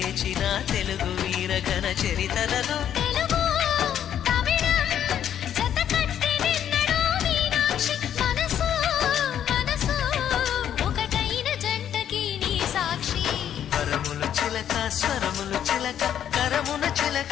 తెలుగు వీర ఘన చరితలలో స్వరములు చిలక కరమున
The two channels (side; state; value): right; quieter; 9.9 dB